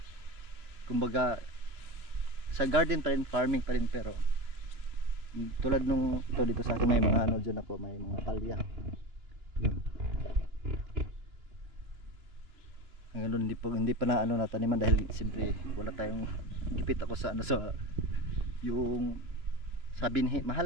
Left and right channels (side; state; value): left; late; 2.9 ms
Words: kumbaga sa garden pa rin, farming pa rin, pero tulad nung dito sa akin may mga dyan ako, may mga palya. Yun. Ngayon hindi pa na nataniman dahil siyempre wala tayong gipit ako sa yung sa binhi.